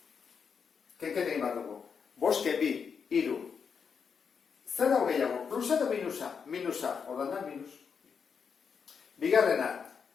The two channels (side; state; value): right; quieter; 6.3 dB